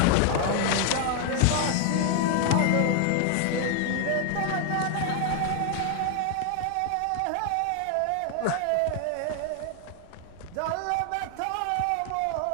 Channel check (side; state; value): both; different; correlation 0.00